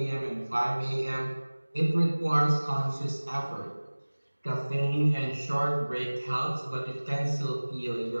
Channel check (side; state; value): both; inverted; correlation -1.00